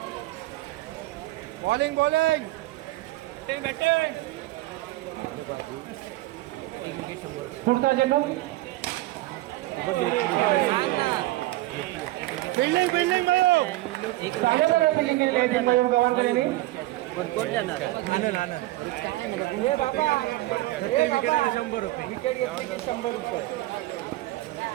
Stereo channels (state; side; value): quieter; left; 18.2 dB